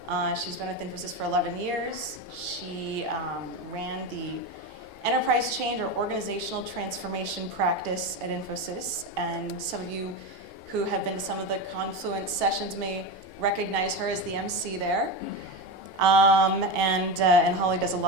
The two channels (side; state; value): left; late; 2.8 ms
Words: She's been with Infosys for 11 years. She ran the enterprise change or organizational transformation practice at Infosys, and some of you who have been to some of the Confluence sessions may recognize her as the MC there. And Holly does a